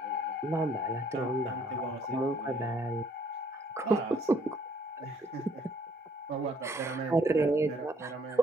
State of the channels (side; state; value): both; normal; correlation 0.64